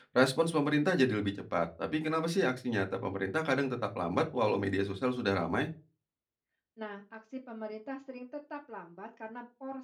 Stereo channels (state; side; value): identical; both; correlation 1.00